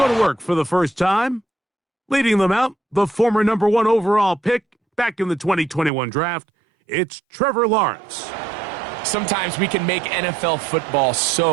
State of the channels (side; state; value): left; drops out; at 5.9 s